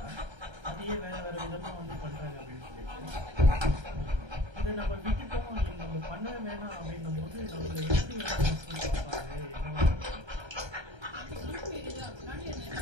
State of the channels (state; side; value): late; left; 1.3 ms